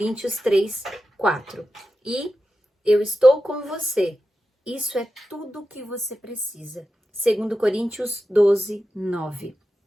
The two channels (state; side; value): normal; both; correlation 0.91